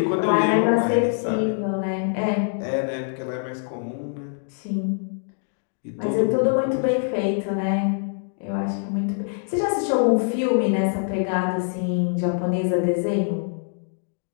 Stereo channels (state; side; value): silent; right; 63 dB below the other